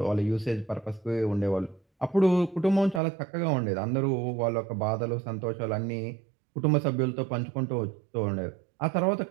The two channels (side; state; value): left; drops out; at 3.0 s